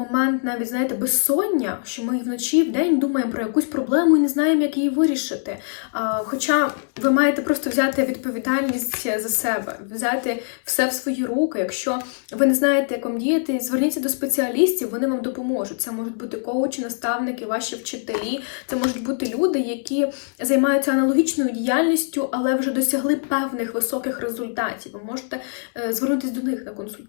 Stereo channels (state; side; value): silent; right; 64 dB below the other